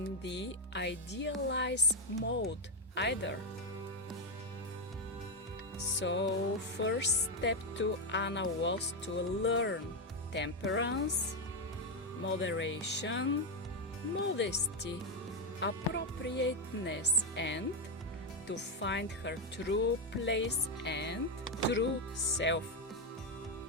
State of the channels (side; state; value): both; normal; correlation 0.05